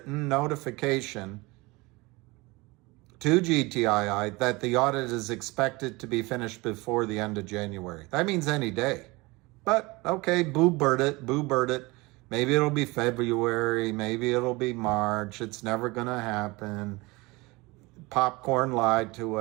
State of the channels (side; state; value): left; quieter; 23.5 dB